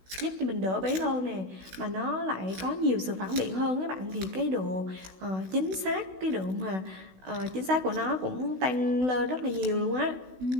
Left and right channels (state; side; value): late; left; 16 ms